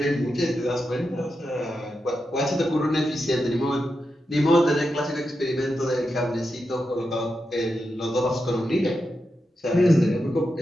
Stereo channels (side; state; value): both; normal; correlation 0.88